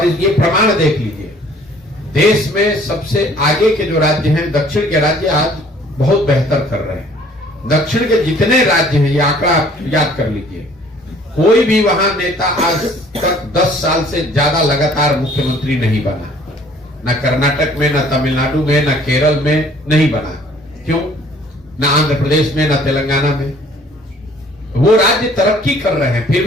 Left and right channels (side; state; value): both; normal; correlation 0.56